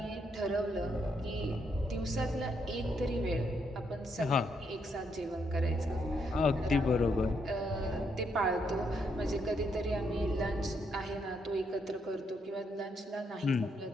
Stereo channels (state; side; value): normal; both; correlation 0.76